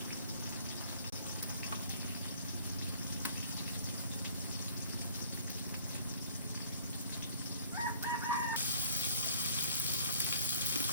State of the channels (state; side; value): inverted; both; correlation -0.54